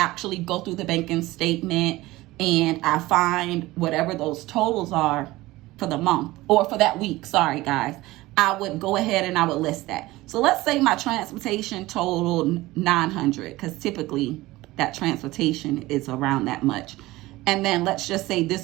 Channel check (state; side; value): quieter; left; 18.7 dB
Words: go through the banking statement and I find whatever those totals are for the month or for that week, sorry guys, I would go ahead and I would list that. So let's say my transportation totaled $900, because typically that transportation is around that much. And then let's just say